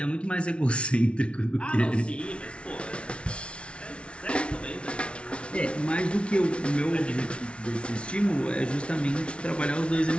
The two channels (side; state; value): right; late; 0.059 ms